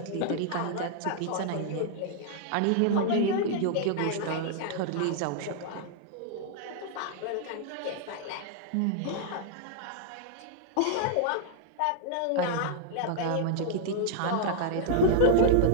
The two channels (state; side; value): different; both; correlation -0.01